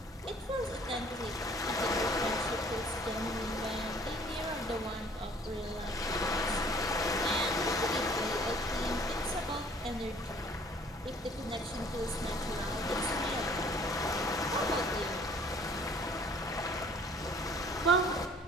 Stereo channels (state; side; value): normal; both; correlation 0.55